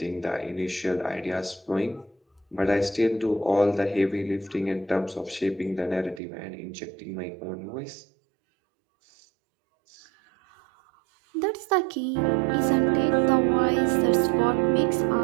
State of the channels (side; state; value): left; drops out; at 6.2 s